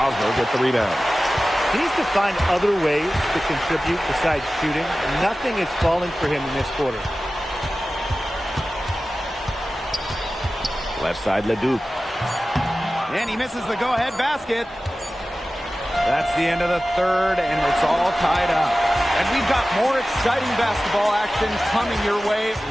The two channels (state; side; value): normal; both; correlation 0.96